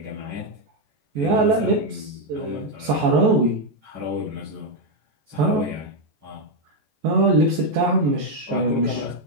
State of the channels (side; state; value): left; late; 14 ms